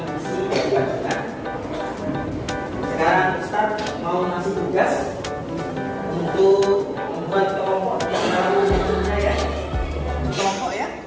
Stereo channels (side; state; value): both; identical; correlation 1.00